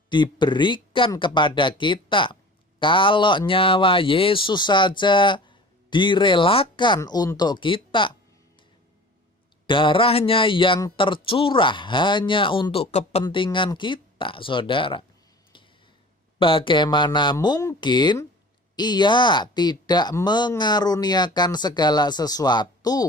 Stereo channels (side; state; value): both; normal; correlation 0.42